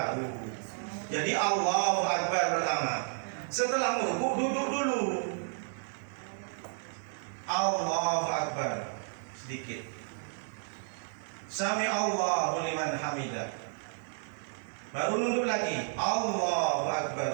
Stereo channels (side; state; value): left; silent; digital silence